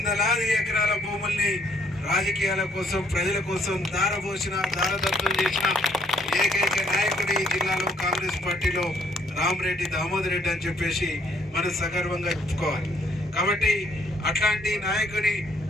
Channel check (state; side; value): normal; both; correlation 0.67